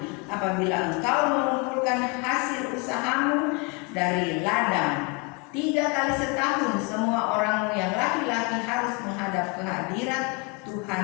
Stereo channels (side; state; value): right; quieter; 30.0 dB